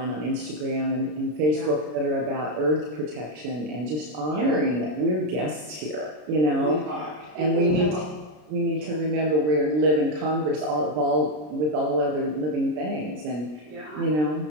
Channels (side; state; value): left; late; 33 ms